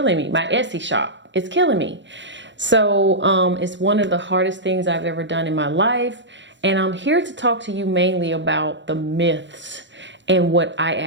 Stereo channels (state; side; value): late; left; 0.53 ms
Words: me. My Etsy shop. It's killing me. So it's one of the hardest things I've ever done in my life. And I'm here to talk to you mainly about the myths and what I